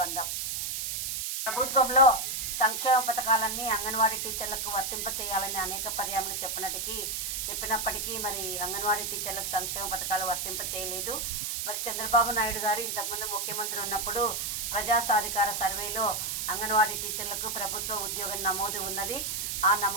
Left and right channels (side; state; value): right; noise; hiss, 2 dB below the sound